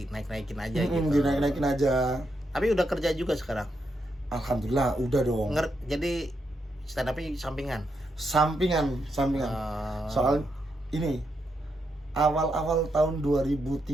aja gitu. Dinaik-naikin aja. Tapi udah kerja juga sekarang? Alhamdulillah udah dong. Jadi stand up-nya sampingan. Soal ini awal-awal tahun 2013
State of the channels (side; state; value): both; normal; correlation 0.82